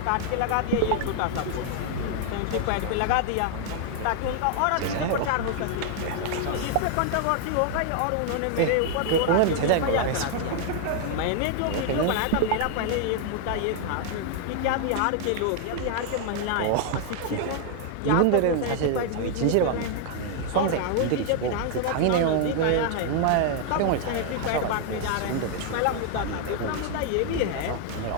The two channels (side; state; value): both; different; correlation 0.00